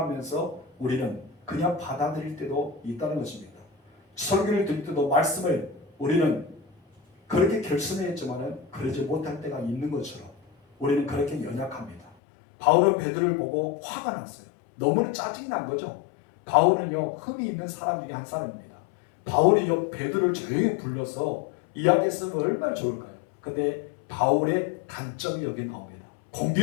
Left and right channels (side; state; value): right; drops out; at 12.1 s